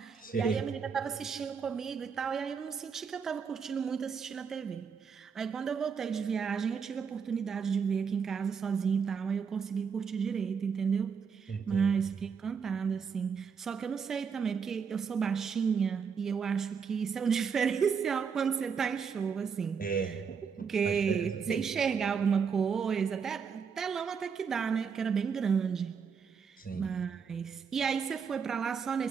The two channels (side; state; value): left; quieter; 6.3 dB